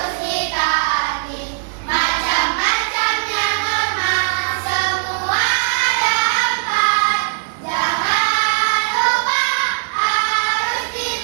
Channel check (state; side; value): silent; left; 66 dB below the other